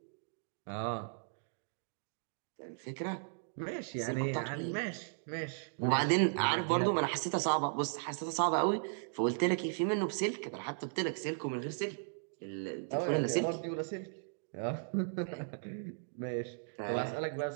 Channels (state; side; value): silent; left; digital silence